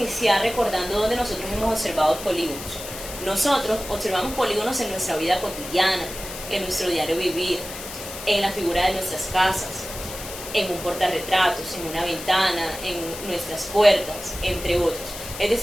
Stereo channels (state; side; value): noise; left; hiss, 11 dB below the sound